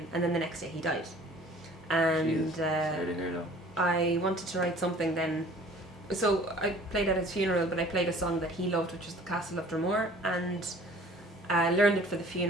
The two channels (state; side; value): normal; both; correlation 0.50